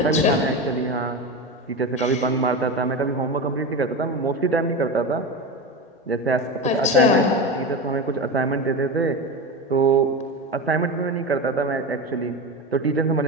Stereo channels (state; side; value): normal; both; correlation 0.22